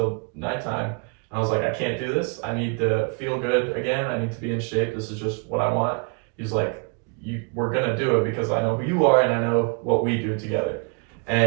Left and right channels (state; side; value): quieter; left; 34.7 dB